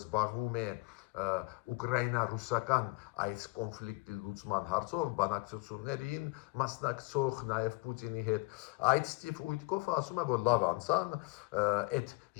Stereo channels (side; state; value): right; quieter; 24.2 dB